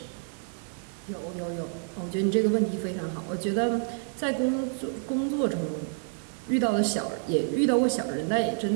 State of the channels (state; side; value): silent; left; 59 dB below the other